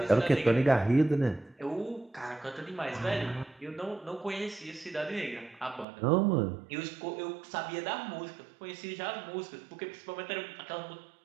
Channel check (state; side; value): drops out; left; at 5.9 s